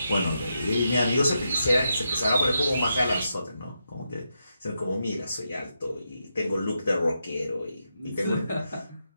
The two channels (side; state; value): both; inverted; correlation -0.84